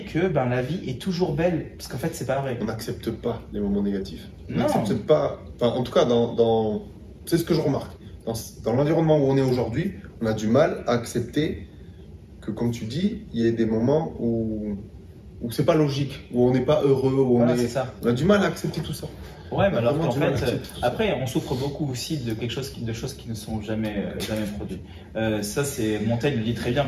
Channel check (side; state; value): both; identical; correlation 1.00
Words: que la vie est toujours belle, parce qu'en fait, c'est pas vrai. On n'accepte pas les moments négatifs. On Non. n'accepte pas... Enfin, en tout cas, c'est ce que je remarque. Dans l'environnement où on est aujourd'hui, on a du mal à accepter que, comme tu dis, il y ait des moments où c'est pas logique, où on n'est pas heureux, où Voilà, c'est ça. on a du mal à accepter tout ça. Ouais, mais alors Vraiment qu'en du mal à fait, accepter tout ça. après, on souffre beaucoup aussi de de choses qui ne sont jamais produites. Ça, c'est Montaigne le dit très bien.